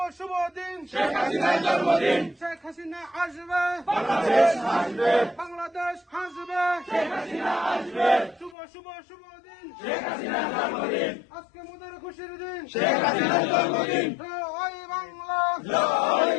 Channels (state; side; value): drops out; right; at 8.6 s